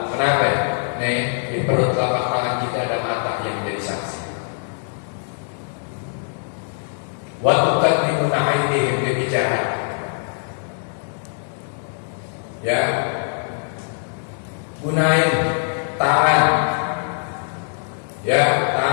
kenapa? Nih, di perut telapak tangan kita ada mata yang menjadi saksi. Wa tukallimuna aydihim, dia bicara. Ya, gunain tangan. Ya,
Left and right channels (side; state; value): right; silent; digital silence